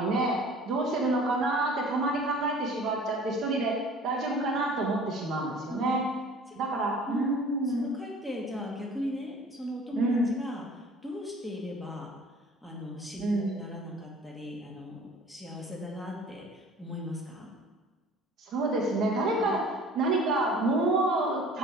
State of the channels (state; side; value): normal; both; correlation 0.46